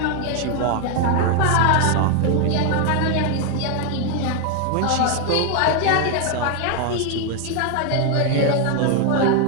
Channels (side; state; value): both; different; correlation 0.01